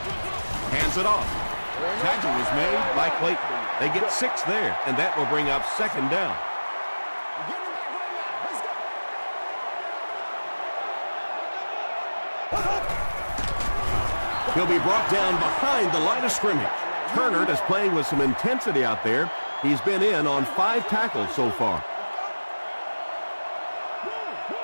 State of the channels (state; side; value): inverted; both; correlation -1.00